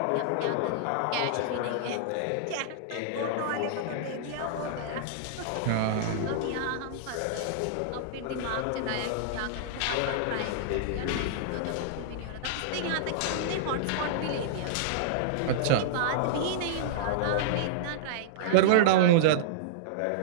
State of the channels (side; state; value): both; different; correlation -0.02